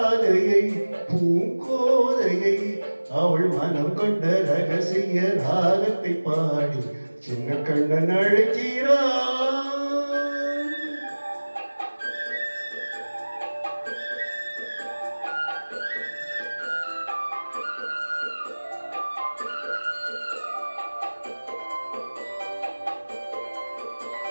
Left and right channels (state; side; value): inverted; both; correlation -1.00